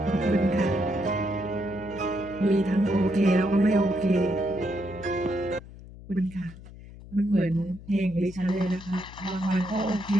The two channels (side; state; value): left; noise; hum, 17 dB below the sound